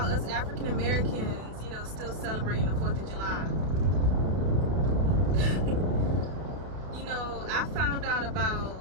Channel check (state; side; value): late; left; 31 ms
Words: us African Americans, you know, still celebrating the 4th of July? You know, I found out